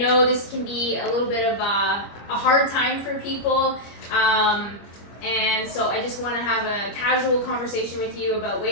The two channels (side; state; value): right; late; 25 ms